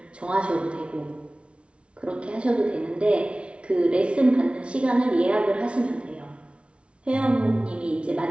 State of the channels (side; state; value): left; late; 0.060 ms